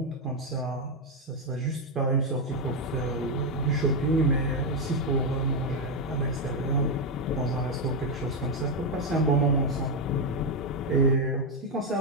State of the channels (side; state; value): both; normal; correlation 0.04